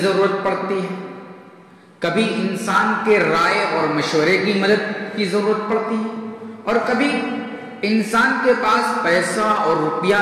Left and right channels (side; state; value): both; identical; correlation 1.00